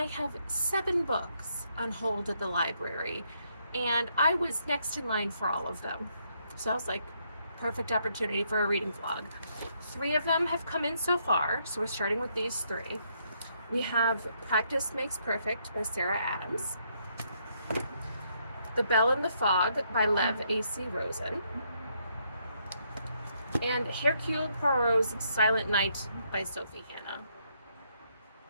have 7 books on hold at the library, and I was next in line for all of them. So I was like, perfect opportunity for a reading vlog. 3 of them have come in so far, so we're starting with these 3. We have Practice Makes Perfect by Sarah Adams, The Bell in the Fog by Lev A.C. Rosen, and Hercule Poirot's Silent Night by Sophie Hannah.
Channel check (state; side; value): inverted; both; correlation -0.74